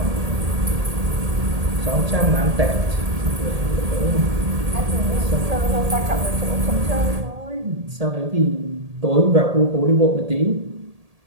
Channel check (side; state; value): left; late; 1.8 ms